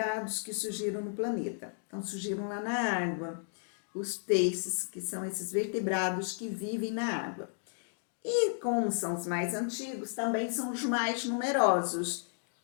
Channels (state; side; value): silent; right; digital silence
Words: que surgiram no planeta. Então, surgiram lá na água. Os peixes, que são esses vertebrados que vivem na água. E como são os mais antigos, também são os mais numerosos.